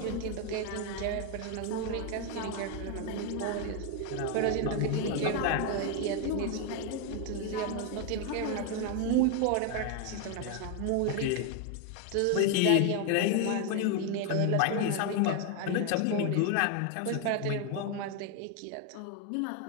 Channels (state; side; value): different; both; correlation 0.01